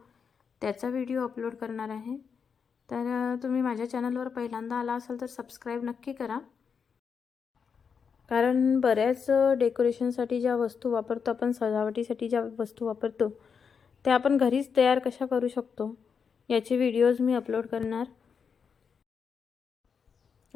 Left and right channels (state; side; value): quieter; right; 6.3 dB